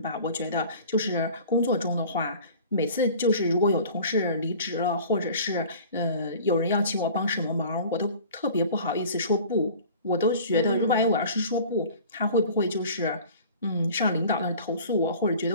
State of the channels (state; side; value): inverted; both; correlation -0.44